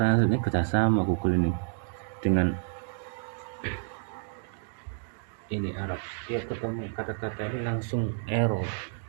ini kerjasama Google ini dengan ini Arab. Dia ketemu kata-kata ini langsung error.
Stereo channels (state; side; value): silent; left; digital silence